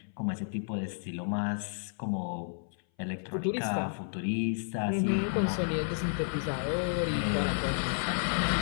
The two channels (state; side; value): silent; right; 57 dB below the other